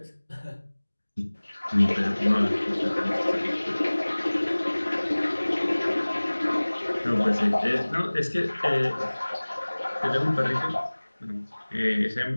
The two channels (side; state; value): both; inverted; correlation -1.00